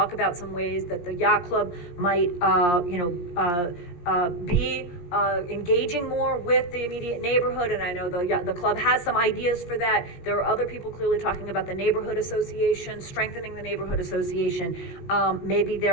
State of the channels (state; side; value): late; right; 17 ms